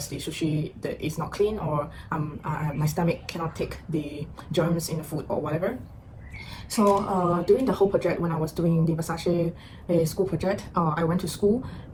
the sushi that is not clean, or my stomach cannot take the germs in the food or whatever. So during the whole project, when I was doing the Versace school project, I went to school.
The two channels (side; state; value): both; identical; correlation 1.00